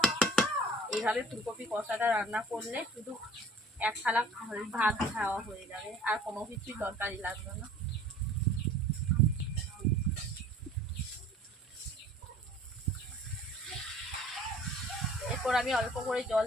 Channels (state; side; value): normal; both; correlation 0.50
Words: এইভাবে ফুলকপি কষাটা রান্না করলে শুধু এক থালা ভাত খাওয়া হয়ে যাবে, আর কোনো কিছুই দরকারি লাগবে না। এরপর আমি অল্প করে জল